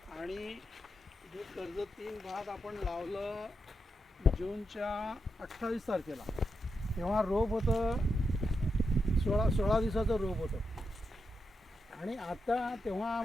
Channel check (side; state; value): both; normal; correlation 0.85